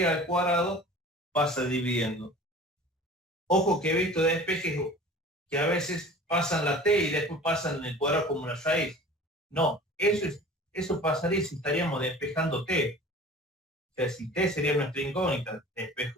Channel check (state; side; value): normal; both; correlation 0.42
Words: al cuadrado pasa dividiendo. Ojo que he visto despejes que a veces pasan la t y después pasan el cuadrado como una raíz. No, eso pasaría si estaríamos despejando t. O sea, si t sería nuestra incógnita,